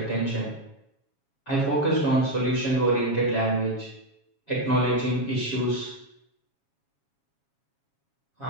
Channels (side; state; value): right; late; 7.3 ms